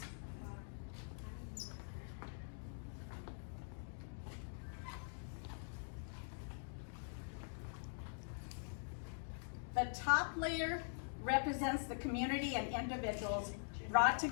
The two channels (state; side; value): silent; right; digital silence